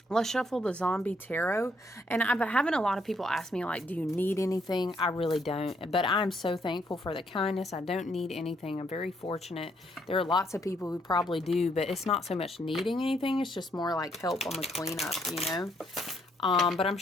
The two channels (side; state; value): both; normal; correlation 0.72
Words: Let's shuffle the zombie tarot. And I've been having a lot of people ask me, like, do you need anything? I really don't. But I'm so thankful for the kindness. I don't need anything. I'm very fortunate. There are lots of people who probably do, but it's not so much needing anything. It's just more like help on the cleanup, you know? But I'm